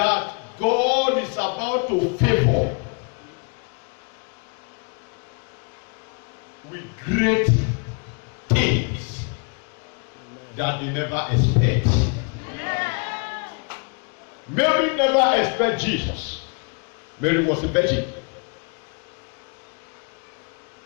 God is about to favor with great things that they never expect. Mary never expected Jesus. Mary was a virgin.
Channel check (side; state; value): right; quieter; 36.7 dB